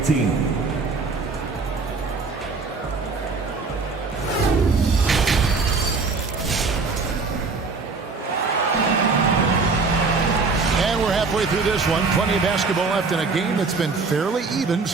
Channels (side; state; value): left; quieter; 4.3 dB